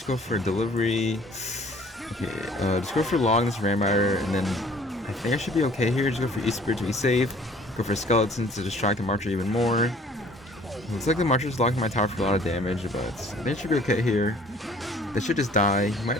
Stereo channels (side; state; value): both; normal; correlation 0.54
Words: go for Delivery. Okay, just go for Log this Ram Rider, and then I think I should be okay here. Just go for E-Spirit to be safe. Go for Skeletons to distract the Marcher even more. Looks like the Marcher's locking my tower for a lot of damage, but I think it should be okay here. They should just die. He might